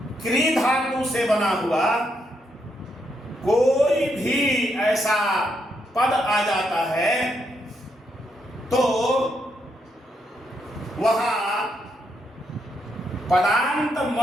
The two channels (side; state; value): both; normal; correlation 0.79